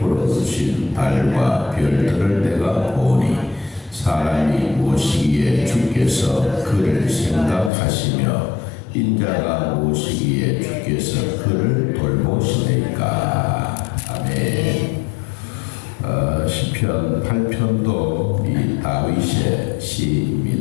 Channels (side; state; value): right; drops out; at 7.7 s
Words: 주신 달과 별들을 내가 보니 사람이 무엇이기에 주께서 그를 생각하시며 인자가 무엇이기에 주께서 그를 돌보시니까. 아멘. 시편 8편도 이 다윗의